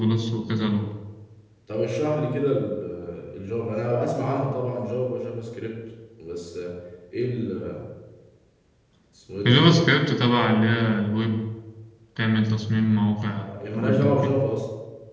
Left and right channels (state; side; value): identical; both; correlation 1.00